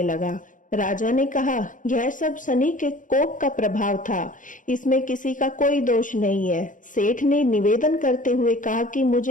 लगा। राजा ने कहा, यह सब शनि के कोप का प्रभाव था, इसमें किसी का कोई दोष नहीं है। सेठ ने निवेदन करते हुए कहा कि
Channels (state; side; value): late; right; 0.38 ms